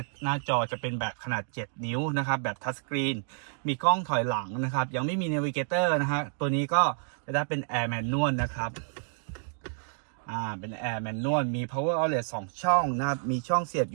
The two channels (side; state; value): left; silent; digital silence